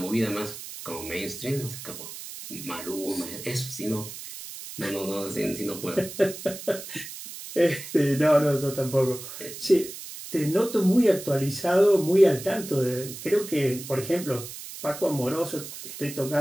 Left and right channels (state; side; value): noise; right; hiss, 11 dB below the sound